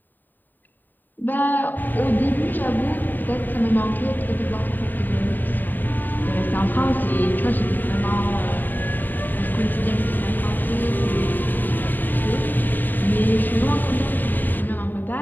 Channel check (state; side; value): late; right; 0.090 ms